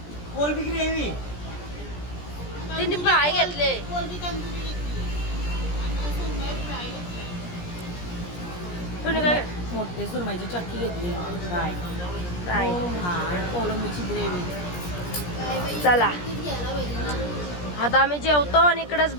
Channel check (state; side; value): late; right; 17 ms